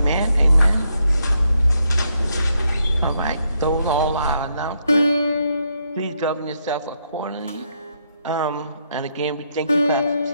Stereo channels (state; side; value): inverted; both; correlation -0.78